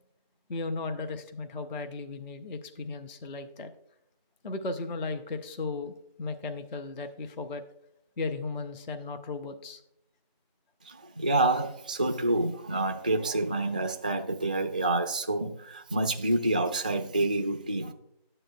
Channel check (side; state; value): both; inverted; correlation -0.58